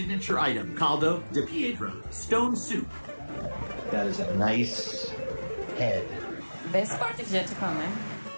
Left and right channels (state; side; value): inverted; both; correlation -1.00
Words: item, caldo de piedra, stone soup. That is a nice head. Best part is yet to come, eh?